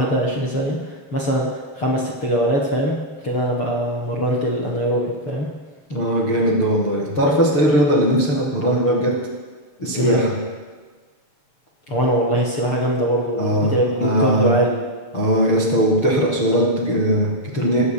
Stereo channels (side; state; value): right; late; 6.7 ms